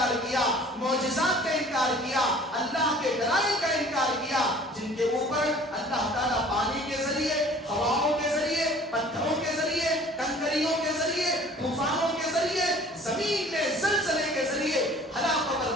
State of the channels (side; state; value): both; normal; correlation 0.50